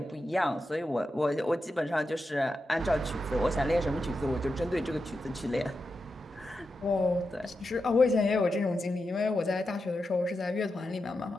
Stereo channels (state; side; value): normal; both; correlation 0.89